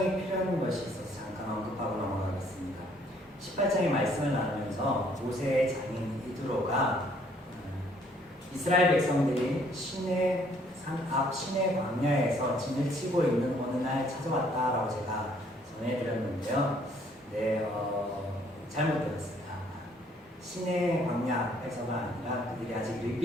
필요한 것이 있어서 잠깐 언급하고 넘어가겠습니다. 18장의 말씀을 나누면서 모세의 장인 이드로가 이스라엘 백성들이 시내 산 앞 시내 광야에서 진을 치고 있는 어느 날 찾아왔다라고 제가 전해드렸는데요. 잘못 들었습니다. 시내 광야에서가 아니라 그들이 아직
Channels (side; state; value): both; normal; correlation 0.64